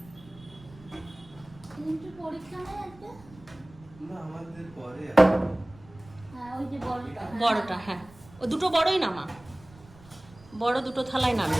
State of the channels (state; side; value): noise; right; rumble, 23 dB below the sound